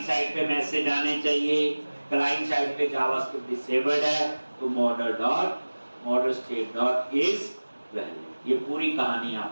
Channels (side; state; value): both; inverted; correlation -1.00